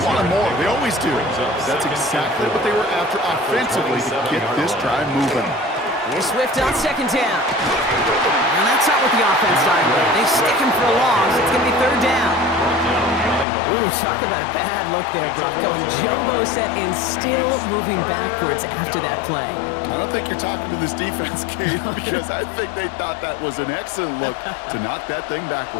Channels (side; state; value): right; drops out; at 13.5 s